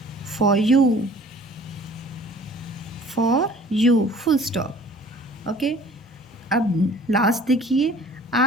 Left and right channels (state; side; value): normal; both; correlation 0.50